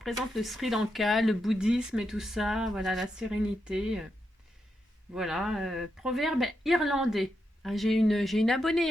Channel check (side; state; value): both; normal; correlation 0.84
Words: le Sri Lanka, le bouddhisme et tout ça. Voilà, la sérénité. Voilà. Proverbe irlandais. Ah, j'ai une abonnée